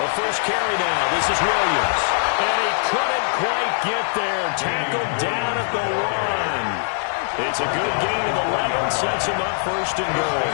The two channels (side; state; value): right; silent; 64 dB below the other